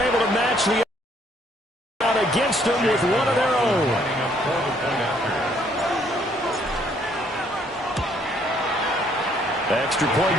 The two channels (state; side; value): normal; both; correlation 0.66